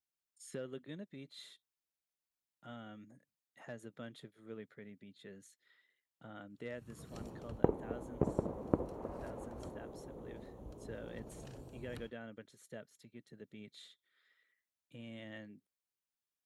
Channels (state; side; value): identical; both; correlation 1.00